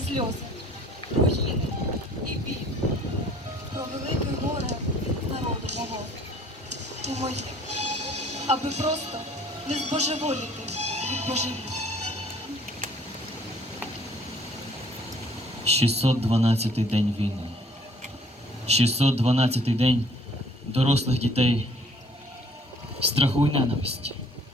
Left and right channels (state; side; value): normal; both; correlation 0.57